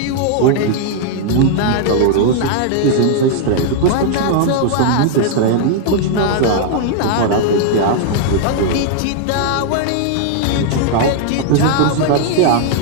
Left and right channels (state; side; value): different; both; correlation -0.01